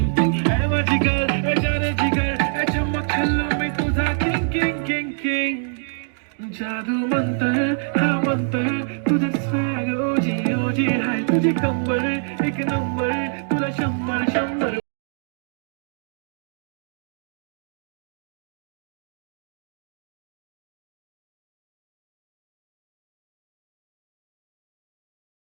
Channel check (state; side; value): silent; left; digital silence